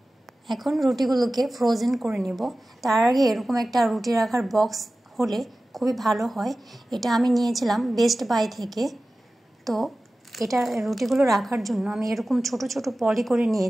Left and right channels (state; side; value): normal; both; correlation 0.96